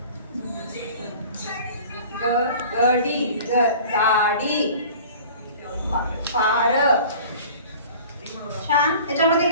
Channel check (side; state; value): both; inverted; correlation -0.44